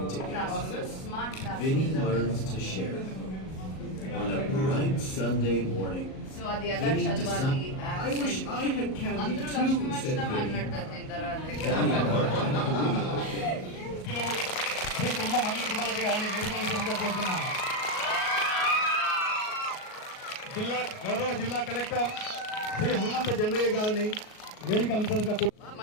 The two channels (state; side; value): late; right; 38 ms